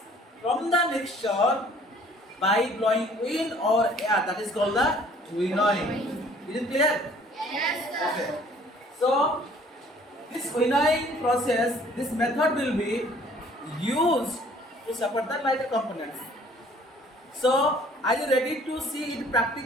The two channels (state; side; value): normal; both; correlation 0.56